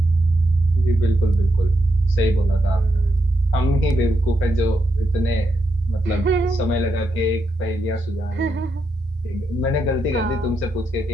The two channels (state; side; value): normal; both; correlation 0.82